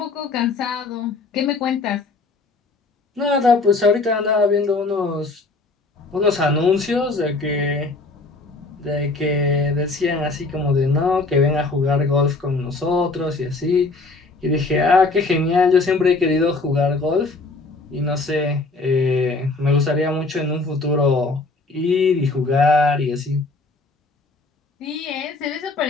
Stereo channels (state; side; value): quieter; right; 3.5 dB